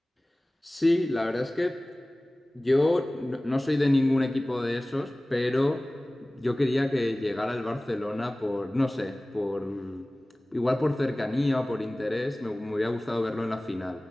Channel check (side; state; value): both; normal; correlation 0.98